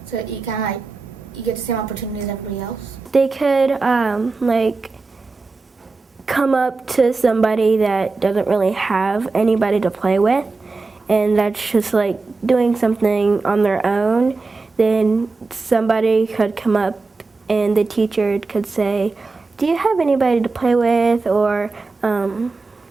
So you kind of like you get the same opportunity as everybody else. They could like come up to somebody that doesn't really have anybody to play with, and that's just like doing something on their own. Then somebody could come up and the teacher could say, "Do you have anybody to play with?" Or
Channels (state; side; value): quieter; left; 3.9 dB